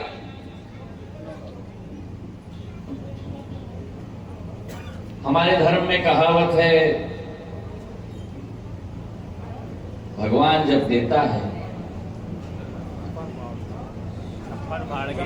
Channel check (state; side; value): identical; both; correlation 1.00